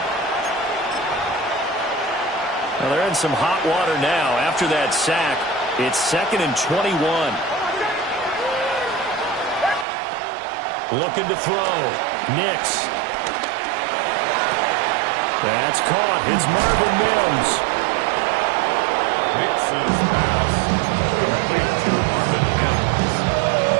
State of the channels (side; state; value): left; drops out; at 9.9 s